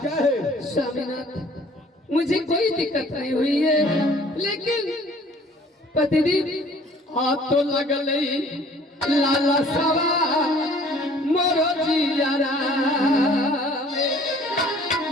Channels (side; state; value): both; normal; correlation 0.54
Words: क्या है? स्वामीनाथ, मुझे कोई दिक्कत नहीं हुई है, लेकिन पतिदेव आप तो लगल लाला सवा मोरो जियारा